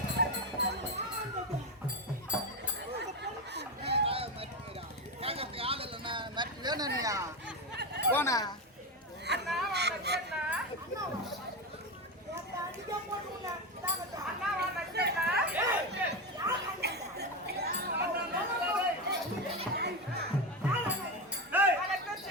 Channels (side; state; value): both; normal; correlation 0.15